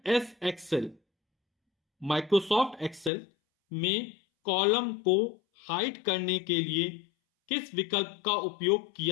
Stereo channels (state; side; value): drops out; right; at 3.1 s